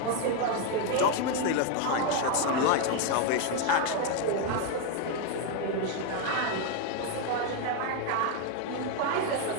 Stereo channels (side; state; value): both; different; correlation 0.01